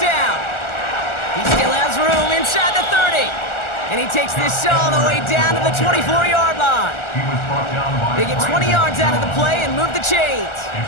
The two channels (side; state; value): right; late; 1.4 ms